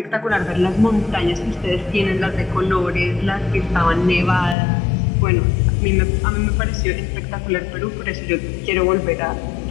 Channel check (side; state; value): right; drops out; at 4.5 s